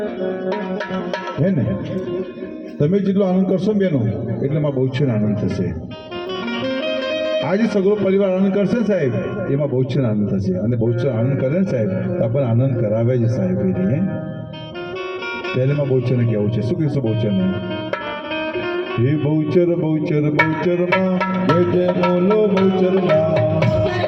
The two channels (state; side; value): identical; both; correlation 1.00